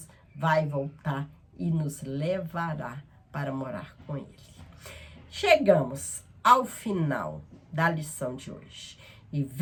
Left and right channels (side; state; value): both; identical; correlation 1.00